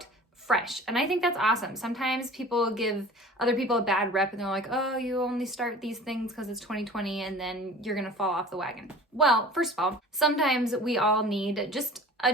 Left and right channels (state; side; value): normal; both; correlation 0.42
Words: fresh. And I think that's awesome. Sometimes people give other people a bad rep and they're like, oh, you only start these things because it's 2020 and then you're going to fall off the wagon. Well, first of all, sometimes we all need just a